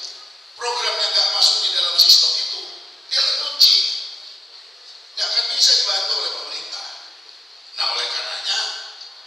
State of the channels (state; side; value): normal; both; correlation 0.93